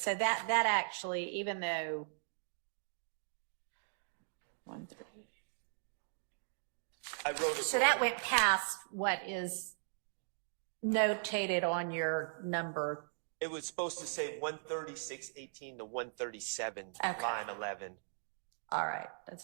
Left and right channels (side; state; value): left; silent; digital silence